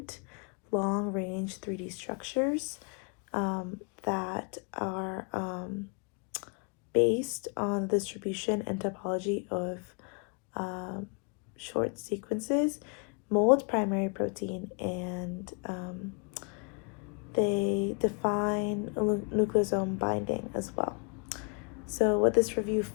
long-range 3D structures that are based on the distribution and topology of short sequences, mold primary protein, and they define nucleosome binding as well. So what this review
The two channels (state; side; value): quieter; right; 37.2 dB